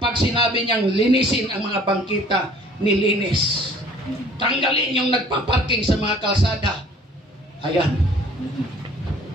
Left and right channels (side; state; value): both; normal; correlation 0.53